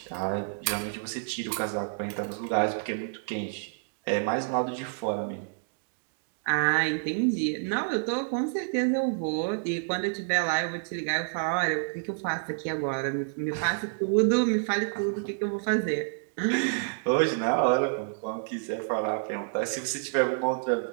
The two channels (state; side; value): silent; left; digital silence